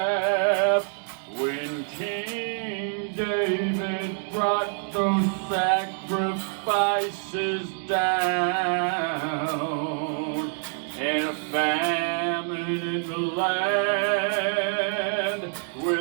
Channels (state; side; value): silent; left; 55 dB below the other